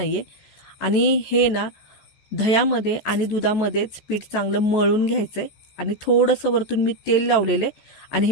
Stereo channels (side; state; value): right; late; 14 ms